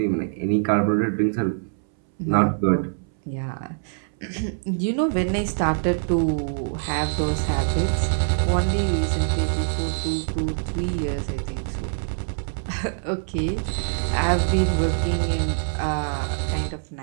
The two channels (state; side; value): silent; left; 62 dB below the other